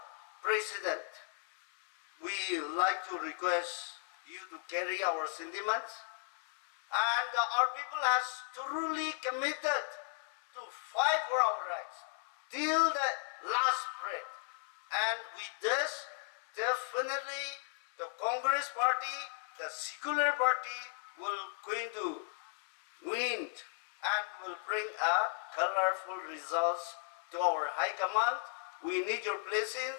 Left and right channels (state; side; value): silent; right; 54 dB below the other